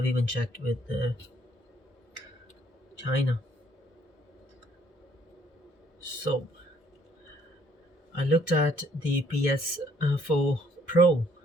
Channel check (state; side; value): normal; both; correlation 0.64